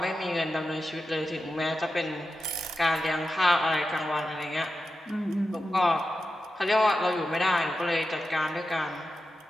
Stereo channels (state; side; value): normal; both; correlation 0.91